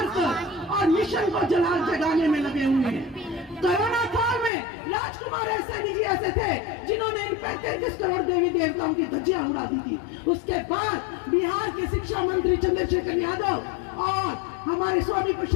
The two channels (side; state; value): right; drops out; at 4.5 s